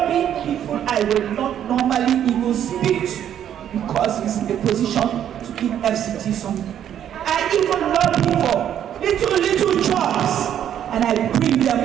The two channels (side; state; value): left; quieter; 10.1 dB